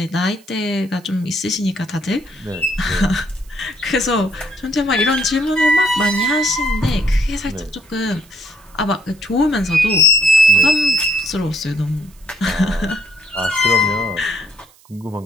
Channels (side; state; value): right; noise; hiss, 29 dB below the sound